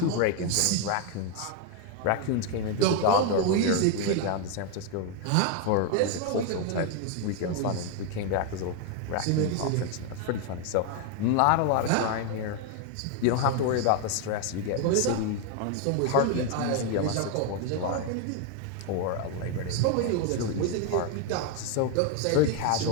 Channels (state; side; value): different; both; correlation 0.01